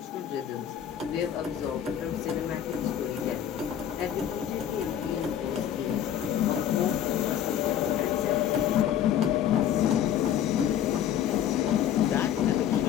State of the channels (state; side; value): quieter; right; 10.1 dB